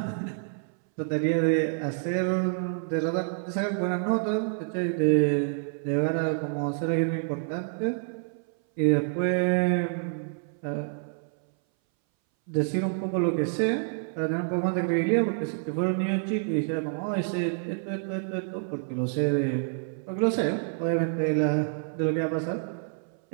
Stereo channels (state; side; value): silent; left; 59 dB below the other